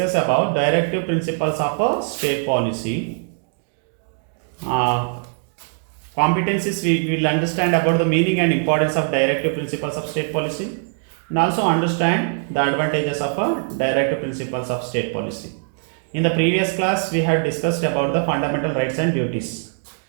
about directive principles of a state policy. Competencies we will understand about the meaning and importance of directive principles of state policy, and also understand the advantages of a directive principles of state policy. In the previous class we had discussed about the fundamental rights and duties,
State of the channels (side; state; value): left; silent; 58 dB below the other